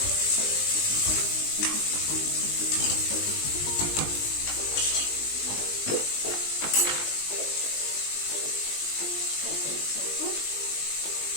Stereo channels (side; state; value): right; late; 20 ms